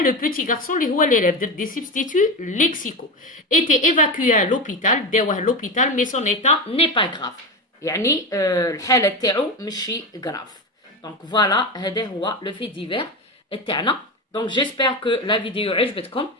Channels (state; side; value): normal; both; correlation 0.20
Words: petit garçon اللي هو l'élève. درت des substituts lexicaux. Était évacué à l'hôpital. داوه l'hôpital mais son état n'est pas grave. يعني الحالة تاعو ماشي grave. Donc voilà هذا هو le fait divers تاعنا. Donc j'espère que la vidéo عجبتكم.